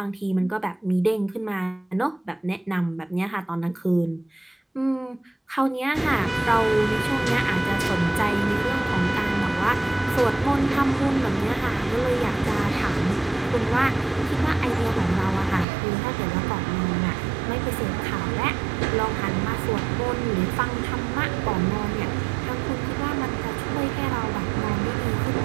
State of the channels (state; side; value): drops out; left; at 15.7 s